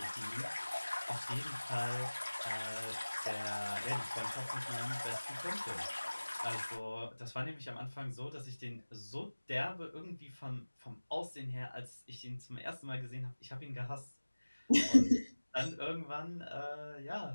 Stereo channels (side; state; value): both; inverted; correlation -1.00